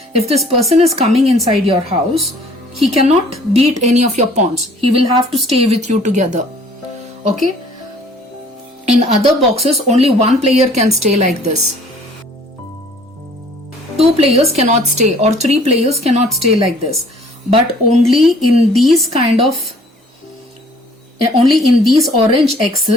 if this person is coming inside your house, he cannot beat any of your pawns. He will have to stay with you together. Okay, in other boxes only one player can stay like this. 2 players cannot stay, or 3 players cannot stay like this. But only in these orange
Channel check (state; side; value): normal; both; correlation 0.55